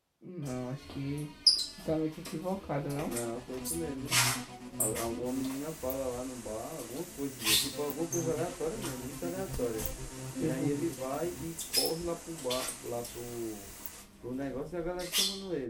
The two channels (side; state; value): both; identical; correlation 1.00